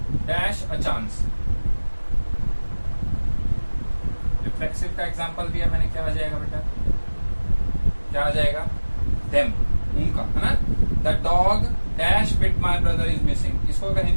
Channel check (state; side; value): inverted; both; correlation -1.00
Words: dash a chance. Reflexive का एग्जांपल दिया मैंने, क्या आ जाएगा बेटा? क्या आ जाएगा? Them, उनका, है ना? The dog dash bit my brother is missing. इसको अगर